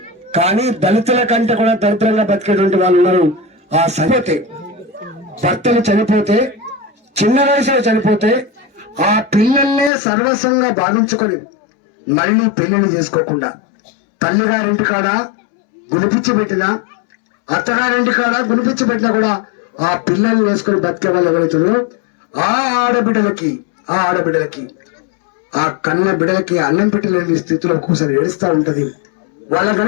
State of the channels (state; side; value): drops out; right; at 9.9 s